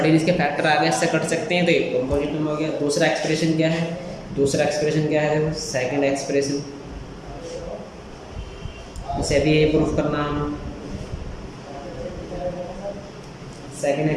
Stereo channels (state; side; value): identical; both; correlation 1.00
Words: इसके फैक्टर आ गए, इससे कट सकते हैं, तो ये कंपोजिट नंबर हो गया। दूसरा एक्सप्रेशन क्या है, देखो सेकंड एक्सप्रेशन, इसे भी यही प्रूफ करना है हमें। सेकंड